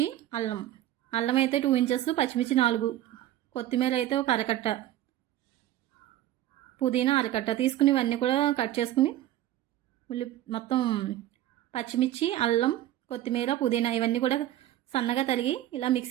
అల్లం అయితే 2 ఇంచెస్, పచ్చిమిర్చి 4, కొత్తిమీర అయితే ఒక అరకట్ట, పుదీనా అరకట్ట తీసుకుని ఇవన్నీ కూడా కట్ చేసుకుని మొత్తం పచ్చిమిర్చి, అల్లం, కొత్తిమీర, పుదీనా ఇవన్నీ కూడా సన్నగా తరిగి ఇలా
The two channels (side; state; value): left; quieter; 13.6 dB